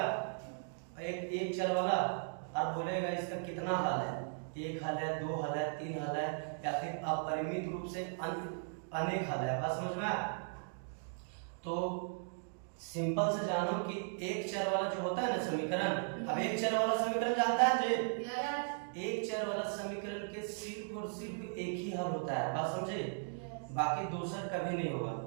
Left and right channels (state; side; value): silent; left; digital silence